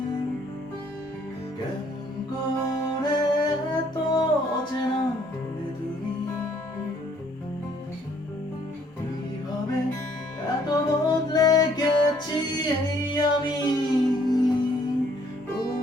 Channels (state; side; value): normal; both; correlation 0.64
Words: কেমন করে তো চেনা হলে তুমি কিভাবে এত বদলে গেছি এই আমি